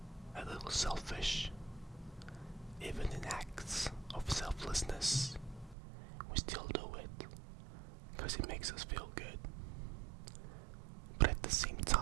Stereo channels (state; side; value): drops out; left; at 5.8 s